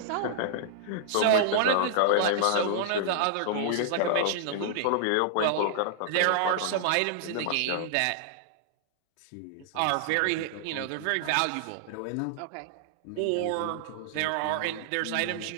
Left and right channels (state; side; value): different; both; correlation -0.01